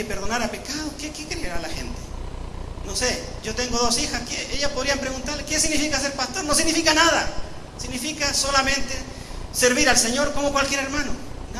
perdonara pecados. ¿Qué creerá la gente? No sé, yo tengo 2 hijas, ellas podrían preguntarle: ¿qué significa ser pastor? No significa nada. Significa solamente servir al Señor como cualquier hermano.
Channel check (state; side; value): identical; both; correlation 1.00